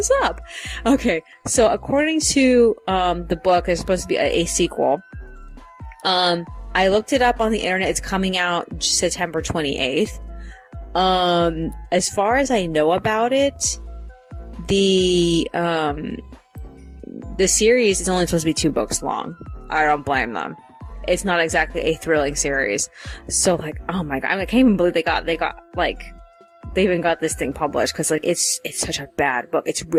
up? Okay, so according to the book, there's supposed to be a sequel. I looked it up on the internet. It's coming out September 28th. As far as I know about it, the series is only supposed to be 2 books long. I don't blame them. It's not exactly a thrilling series. So like, oh my god, I can't even believe they got like they even got this thing published, because like it's such a bad book. It's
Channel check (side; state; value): both; identical; correlation 1.00